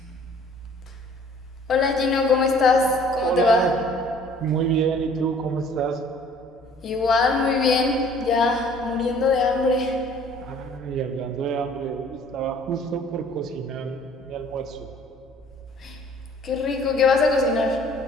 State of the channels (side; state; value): both; normal; correlation 0.54